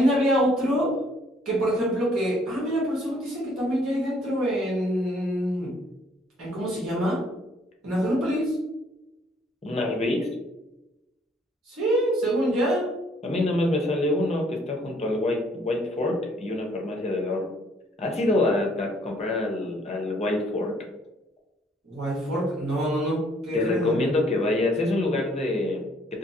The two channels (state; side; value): normal; both; correlation 0.64